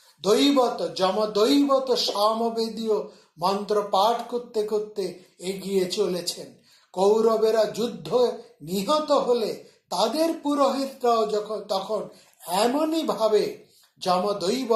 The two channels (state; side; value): identical; both; correlation 1.00